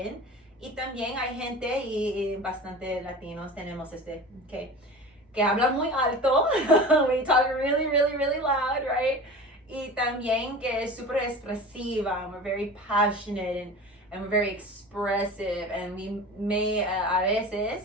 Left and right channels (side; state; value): both; normal; correlation 0.35